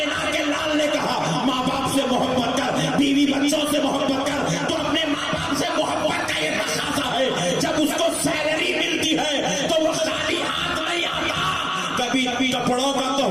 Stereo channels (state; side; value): identical; both; correlation 1.00